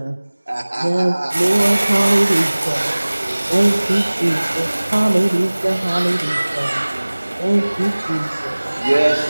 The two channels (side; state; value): both; inverted; correlation -1.00